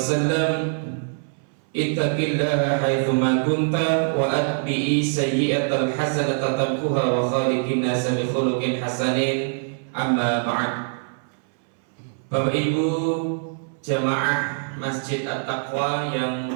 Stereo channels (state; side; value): silent; left; 63 dB below the other